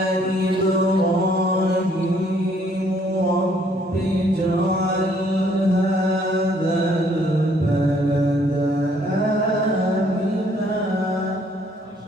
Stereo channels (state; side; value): normal; both; correlation 0.64